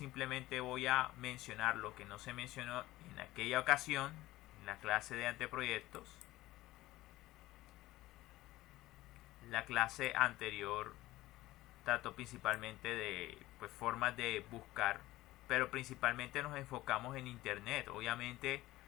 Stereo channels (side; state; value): right; quieter; 17.3 dB